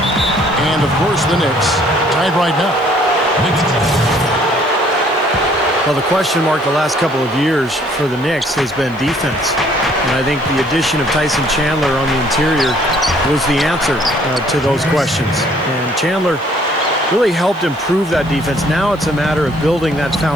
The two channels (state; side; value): noise; left; hiss, 29 dB below the sound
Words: And, of course, the Knicks tied right now. Well, the question mark the last couple of years for the Knicks has been defense. And I think the addition of Tyson Chandler on the interior was the answer to those questions. And Chandler really helped improve that defense. Now it's a matter of building that